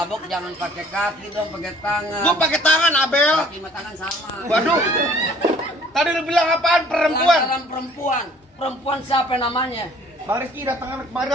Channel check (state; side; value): normal; both; correlation 0.55